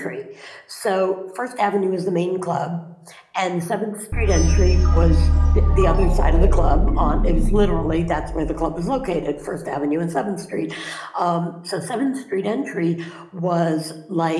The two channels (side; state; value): both; identical; correlation 1.00